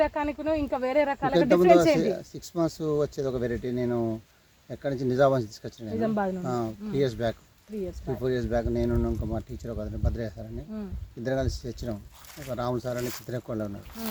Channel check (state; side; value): identical; both; correlation 1.00